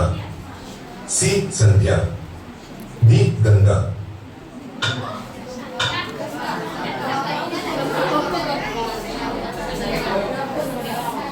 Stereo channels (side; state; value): both; identical; correlation 1.00